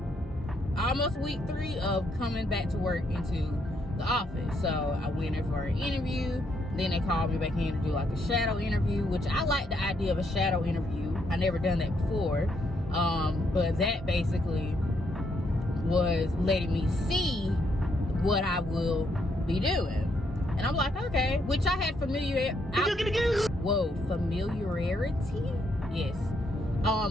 almost week 3 of coming back to work into the office. So I went in for an interview. Then they called me back in to do like a shadow interview, which I like the idea of a shadow interview. I never done that before. But that basically was letting me see what I will be doing. And I'm like, okay, which I had familiarity. Yes.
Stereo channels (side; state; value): both; normal; correlation 0.75